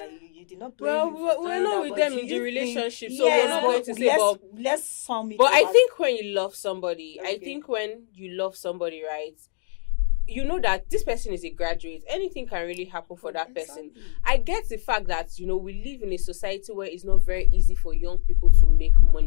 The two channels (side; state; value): right; silent; digital silence